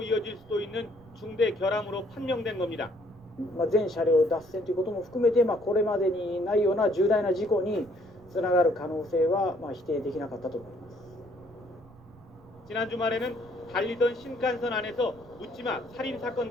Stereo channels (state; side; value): noise; right; rumble, 24 dB below the sound